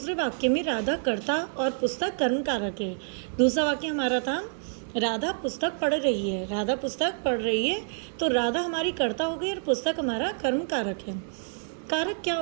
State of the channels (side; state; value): left; silent; digital silence